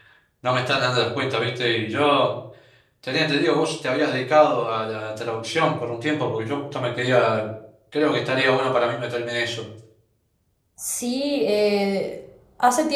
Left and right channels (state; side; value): identical; both; correlation 1.00